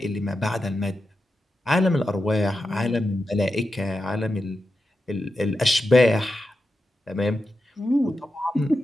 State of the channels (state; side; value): normal; both; correlation 0.89